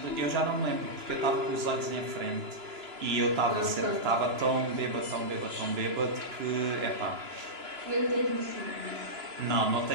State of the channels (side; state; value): left; late; 2.9 ms